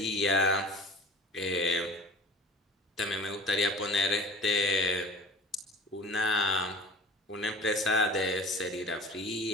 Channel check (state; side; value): normal; both; correlation 0.43